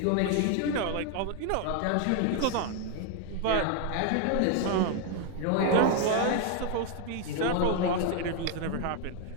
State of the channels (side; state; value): both; different; correlation 0.01